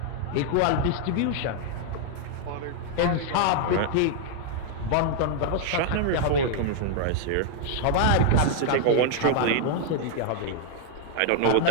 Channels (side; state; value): both; different; correlation 0.00